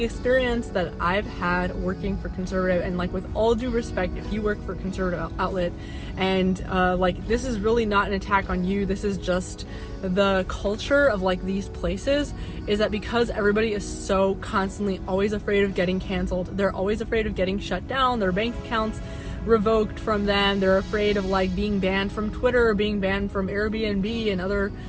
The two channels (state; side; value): identical; both; correlation 1.00